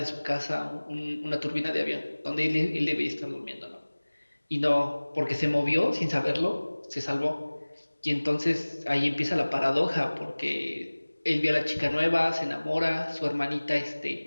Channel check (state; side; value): inverted; both; correlation -1.00